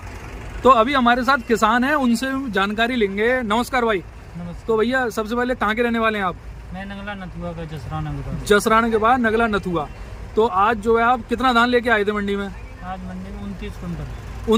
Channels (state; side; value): identical; both; correlation 1.00